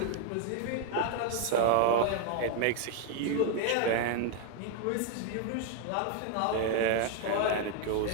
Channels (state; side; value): different; both; correlation 0.01